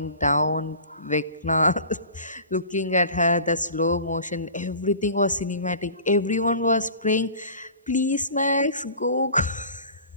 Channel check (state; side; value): inverted; both; correlation -0.41